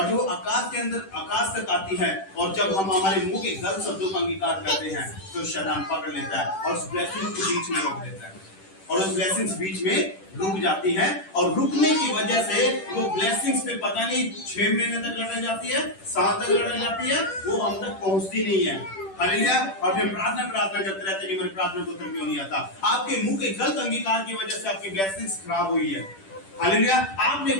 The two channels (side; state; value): right; late; 10 ms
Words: जो आकाश के अंदर आकाश तक आती है, और जब हम हमारे मुंह के गलत शब्दों का अंगीकार करते हैं, तो शैतान पकड़ लेता है और उस ब्लेसिंग को बीच में रोक देता है, और उस ब्लेसिंग्स बीच में रुक जाती है, और रुकने की वजह से वो ब्लेसिंग्स पे पता नहीं 6 महीने तक लटक जाती है, साल तक लटक जाती है, वो हम तक पहुंचती नहीं है। हालेलुया। और फिर प्रार्थना करते रहते हैं कि मेरी प्रार्थना को उत्तर क्यों नहीं आता। आपके मुंह के गलत अंगीकार की वजह से आपकी ब्लेसिंग्स खराब हुई है। हालेलुया। आपने